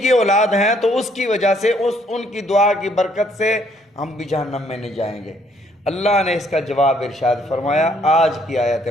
اولاد ہیں، تو اس کی وجہ سے ان کی دعا کی برکت سے ہم بھی جہنم میں نہیں جائیں گے۔ اللہ نے اس کا جواب ارشاد فرمایا آج کی آیت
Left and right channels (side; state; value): both; normal; correlation 0.66